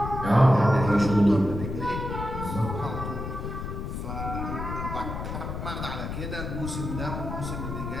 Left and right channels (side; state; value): left; noise; rumble, 5 dB below the sound